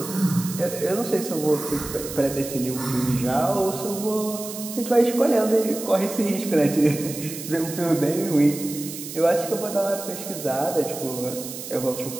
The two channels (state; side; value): noise; right; hiss, 10 dB below the sound